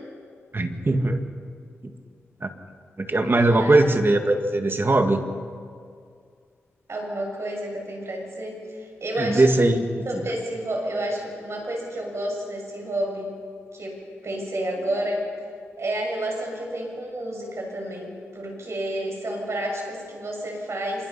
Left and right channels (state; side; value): normal; both; correlation 0.87